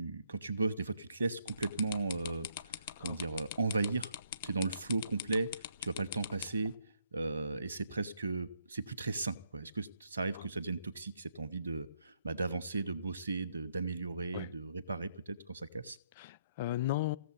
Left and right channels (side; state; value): both; inverted; correlation -0.73